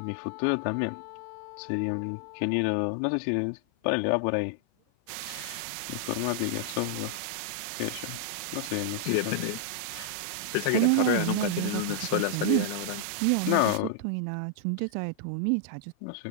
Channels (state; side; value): different; both; correlation -0.01